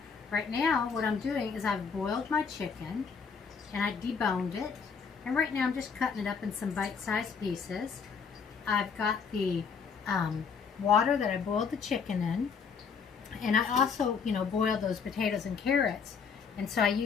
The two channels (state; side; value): quieter; right; 5.9 dB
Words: Right now, what I'm doing is I've boiled my chicken and I deboned it. And right now I'm just cutting it up in some bite-sized pieces. I've got the water that I boiled the chicken in. And I also, boiled those potatoes and carrots. And so I